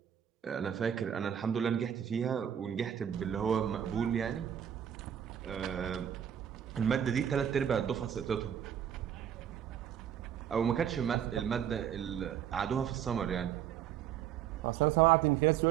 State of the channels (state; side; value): quieter; left; 9.5 dB